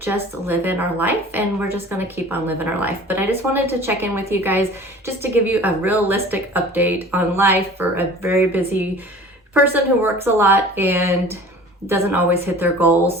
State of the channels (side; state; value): both; normal; correlation 0.44